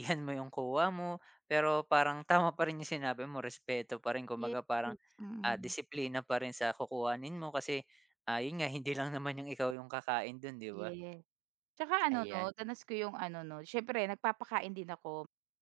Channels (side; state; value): left; drops out; at 9.8 s